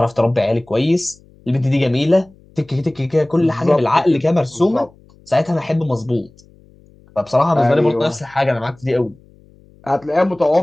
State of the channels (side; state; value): left; noise; hum, 28 dB below the sound